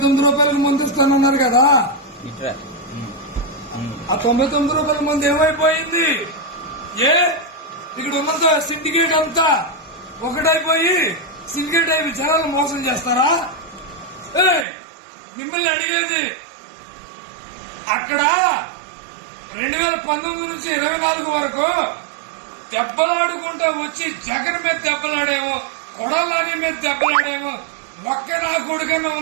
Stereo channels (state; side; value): drops out; left; at 14.7 s